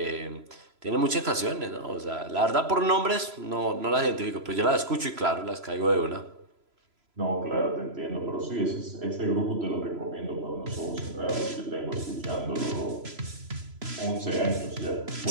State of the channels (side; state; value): left; late; 3.0 ms